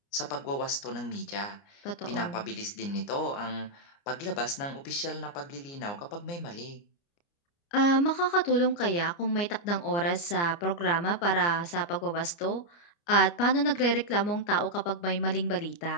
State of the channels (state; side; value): late; right; 29 ms